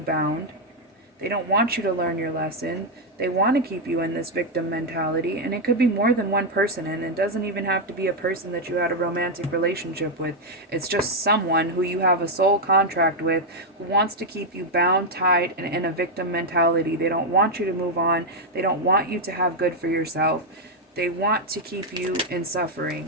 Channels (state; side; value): normal; both; correlation 0.01